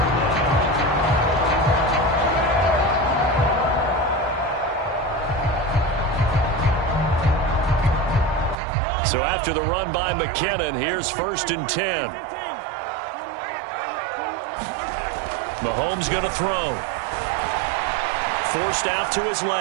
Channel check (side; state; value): left; drops out; at 8.6 s